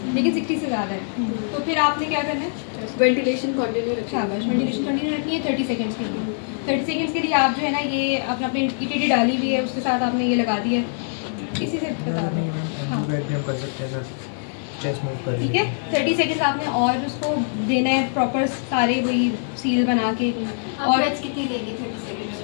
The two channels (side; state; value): right; silent; digital silence